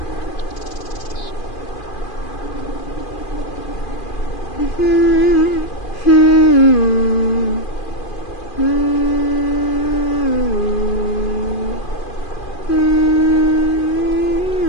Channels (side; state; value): right; late; 2.4 ms